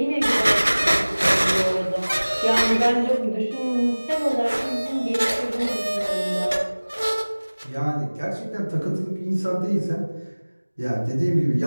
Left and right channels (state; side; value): inverted; both; correlation -1.00